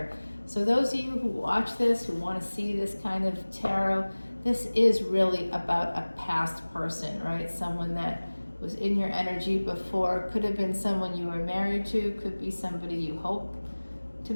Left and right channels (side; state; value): both; inverted; correlation -1.00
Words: So those of you who watch this, who want to see this kind of tarot, this is really about a past person, right? Someone that was in your energy before. Could have been someone you were married to, could be somebody you hope to